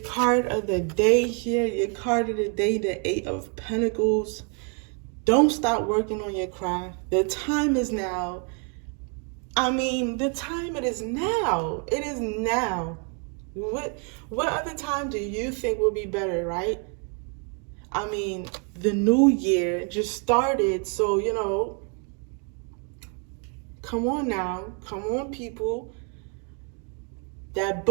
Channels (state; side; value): quieter; left; 39.5 dB